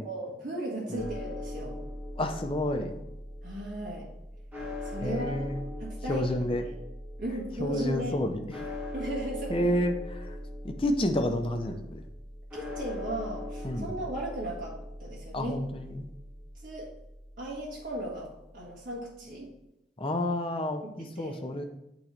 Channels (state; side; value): normal; both; correlation 0.61